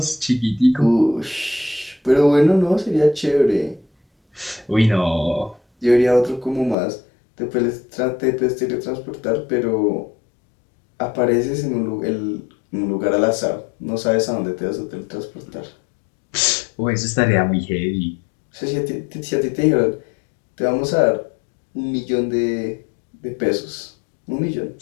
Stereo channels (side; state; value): right; drops out; at 6.8 s